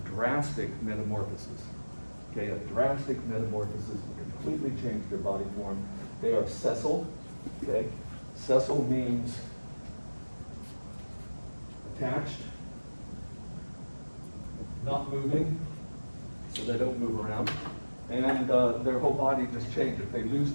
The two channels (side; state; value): both; inverted; correlation -1.00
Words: drastic metamorphosis. Okay, a drastic metamorphosis will completely change their body form. They are sessile, okay? Sessile means attached, not moving, so they don't move around. And their whole body just changes. They lose